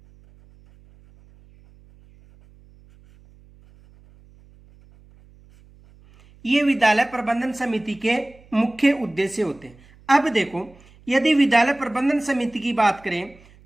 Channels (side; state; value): right; noise; hum, 27 dB below the sound